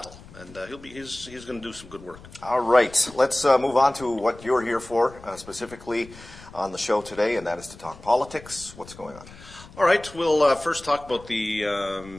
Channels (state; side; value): noise; left; rumble, 19 dB below the sound